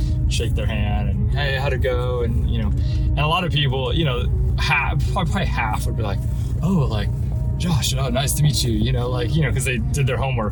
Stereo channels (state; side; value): identical; both; correlation 1.00